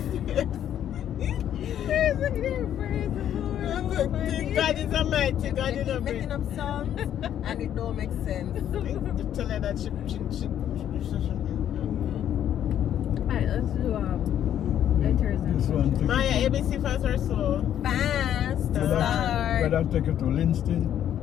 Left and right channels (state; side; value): quieter; right; 10.4 dB